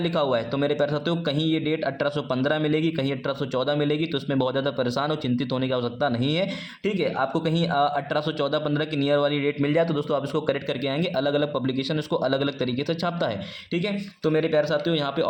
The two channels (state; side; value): identical; both; correlation 1.00